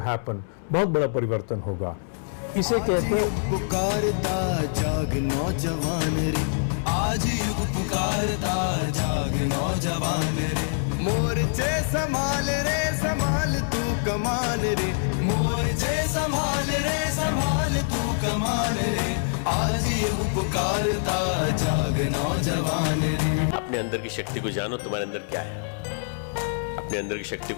बहुत बड़ा परिवर्तन होगा। इसे कहते हैं पुकारता जाग नौजवान रे, आज युग पुकारता जाग नौजवान रे, मोर्चे संभाल रे संभाल तू कमान रे, मोर्चे संभाल रे संभाल तू कमान रे, आज युग पुकारता जाग नौजवान रे। अपने अंदर की शक्ति को जानो, तुम्हारे अंदर क्या है। अपने अंदर की शक्ति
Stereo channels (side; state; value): right; silent; 62 dB below the other